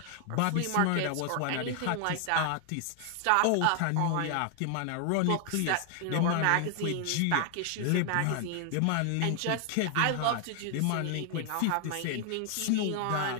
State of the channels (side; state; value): both; different; correlation 0.00